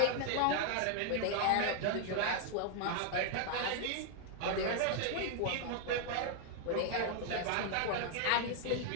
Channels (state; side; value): different; both; correlation 0.00